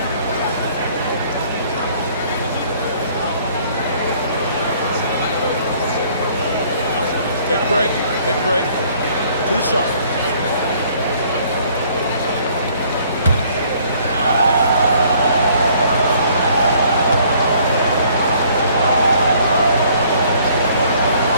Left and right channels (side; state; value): both; inverted; correlation -0.60